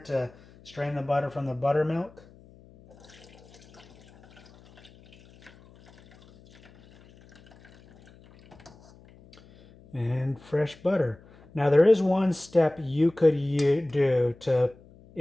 strain the butter from the buttermilk. And fresh butter. Now there is one step you could do to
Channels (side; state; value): left; noise; hum, 25 dB below the sound